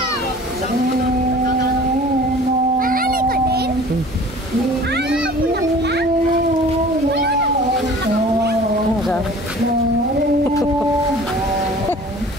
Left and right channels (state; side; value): normal; both; correlation 0.45